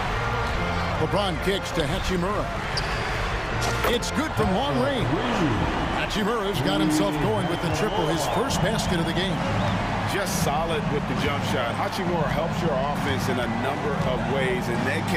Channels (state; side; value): identical; both; correlation 1.00